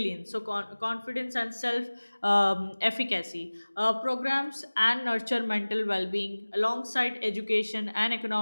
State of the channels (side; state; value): both; inverted; correlation -1.00